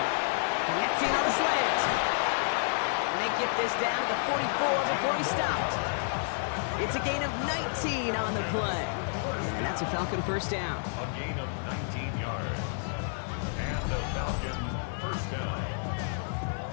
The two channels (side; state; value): right; silent; digital silence